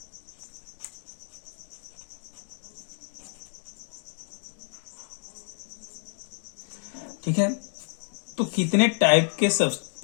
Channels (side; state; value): right; silent; 58 dB below the other